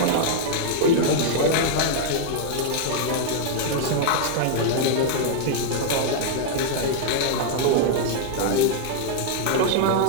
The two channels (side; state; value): both; different; correlation -0.01